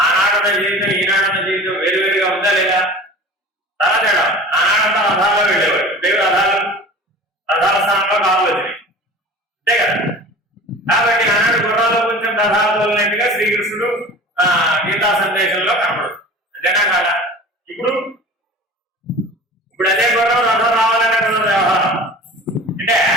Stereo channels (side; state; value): both; normal; correlation 0.40